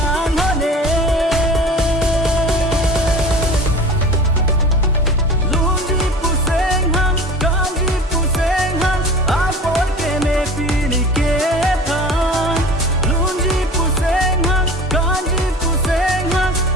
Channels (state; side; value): normal; both; correlation 0.39